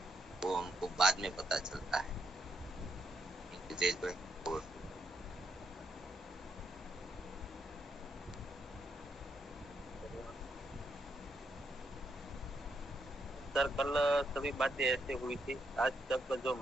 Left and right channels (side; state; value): both; normal; correlation 0.78